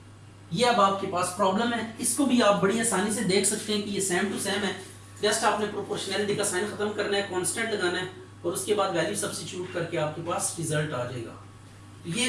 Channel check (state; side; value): identical; both; correlation 1.00